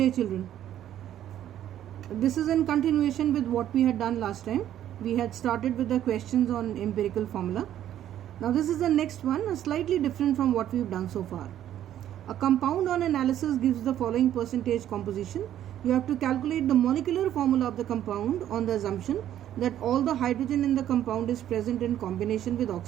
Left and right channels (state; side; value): quieter; left; 11.5 dB